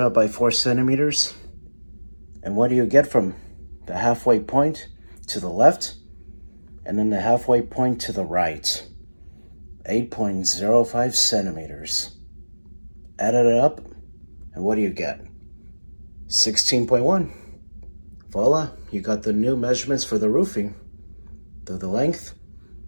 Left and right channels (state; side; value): inverted; both; correlation -1.00